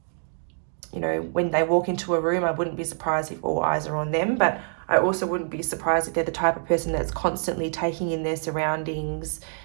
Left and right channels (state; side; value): silent; left; 61 dB below the other